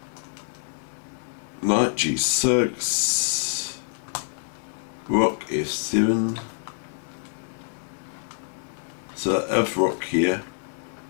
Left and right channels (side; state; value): right; silent; 61 dB below the other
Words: Knight g6, rook f7. So if rook here,